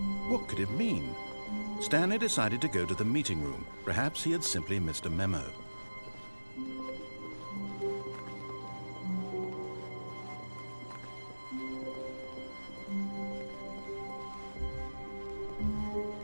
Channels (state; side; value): inverted; both; correlation -1.00